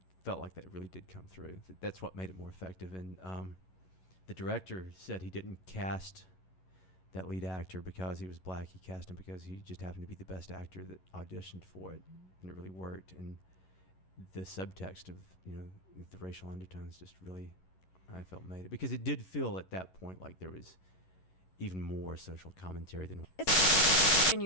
felt like that really did come through. That's what made it more effective. And the director said he didn't cast that lead actor because he was black. He cast him because he just happened to be the best actor that auditioned for it, and it really worked. And the subtext of the racial undertones just really, I felt, made it, because it did feel at that point like there was even more social commentary than. And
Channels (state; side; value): late; right; 11 ms